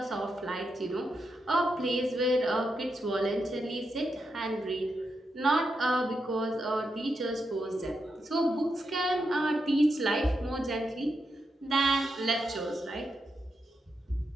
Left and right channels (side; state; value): both; normal; correlation 0.84